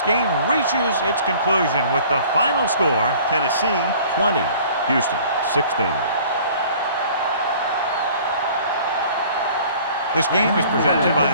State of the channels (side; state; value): both; inverted; correlation -0.50